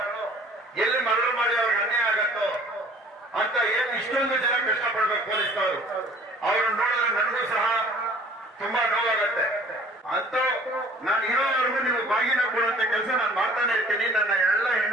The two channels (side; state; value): both; normal; correlation 0.52